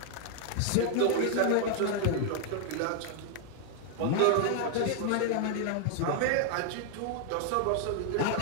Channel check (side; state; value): both; different; correlation 0.00